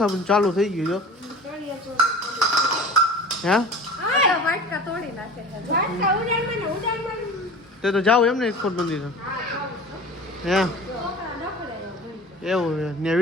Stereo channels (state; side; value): normal; both; correlation 0.39